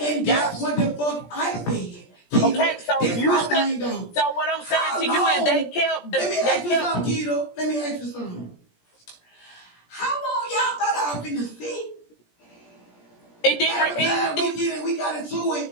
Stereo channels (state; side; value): late; right; 17 ms